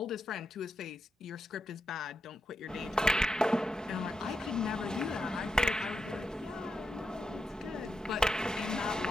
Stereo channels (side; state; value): both; normal; correlation 0.85